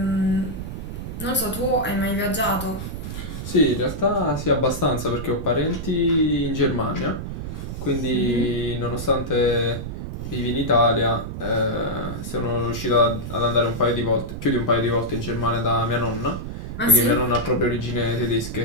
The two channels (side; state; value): right; noise; rumble, 7 dB below the sound